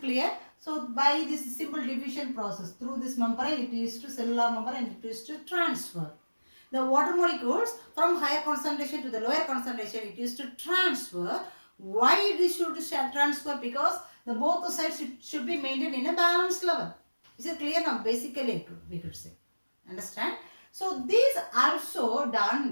clear? So by this simple division process, through this membrane it is to cellular membrane and it is to transfer. The water molecules from higher concentration to the lower concentration it is to transfer. Why it should transfer? Because the both the sides should be maintained in a balanced level. Is it clear now? Basically we could say. Understand? So these also done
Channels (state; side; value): inverted; both; correlation -1.00